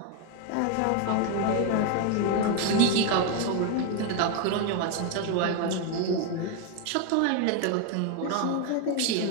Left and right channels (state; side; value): different; both; correlation 0.01